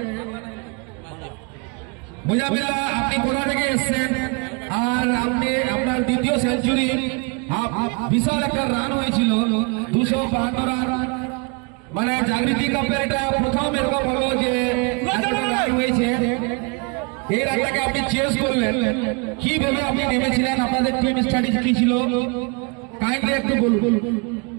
मुजफ्फर अपनी पुराने के हिस्से और अपने अपना द्वितीय सेंचुरी आप विशाल एक রান হয়েছিল 252 রান মানে জাগৃতি কাপের এটা প্রথম এরকম হলো যে রান হয়েছে। এই রানটাকে আপনি চেস করলেন কিভাবে আপনি নেমেছিলেন আপনাদের টিম স্ট্র্যাটেজি কি ছিল কাইন্ডলি একটু বলুন।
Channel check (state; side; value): quieter; left; 32.6 dB